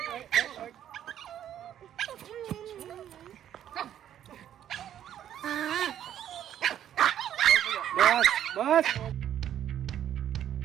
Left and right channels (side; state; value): left; quieter; 10.6 dB